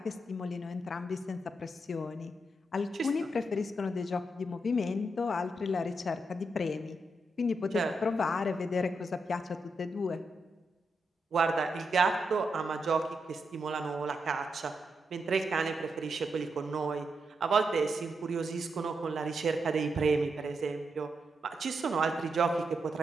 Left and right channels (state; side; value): normal; both; correlation 0.83